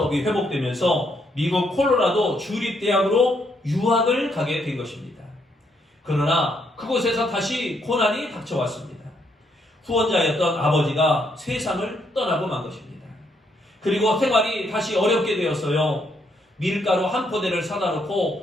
회복되면서 미국 콜로라도 주립대학으로 유학을 가게 된 것입니다. 그러나 그곳에서 다시 고난이 닥쳐왔습니다. 후원자였던 아버지가 세상을 떠나고 만 것입니다. 그리고 생활이 다시 어렵게 되었어요. 밀가루 한 포대를 사다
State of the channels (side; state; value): both; normal; correlation 0.74